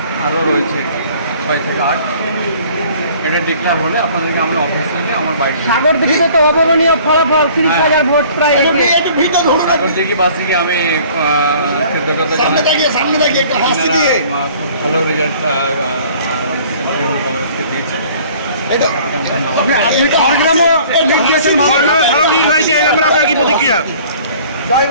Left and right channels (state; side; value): inverted; both; correlation -0.52